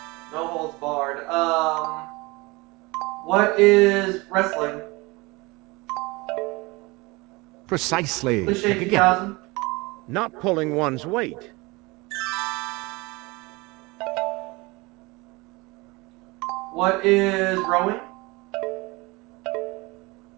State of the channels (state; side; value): quieter; left; 24.2 dB